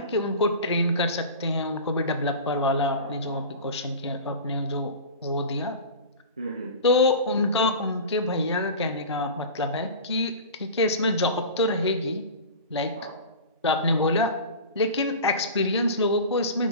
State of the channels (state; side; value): inverted; both; correlation -0.33